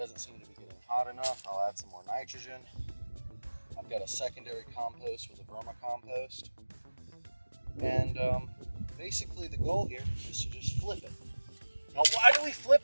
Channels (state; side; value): inverted; both; correlation -1.00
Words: seem to be getting hot enough, I'll add some more nitrogen. I've got a secondary compost with a vermicompost. And basically the goal here is to just flip it. Now why do we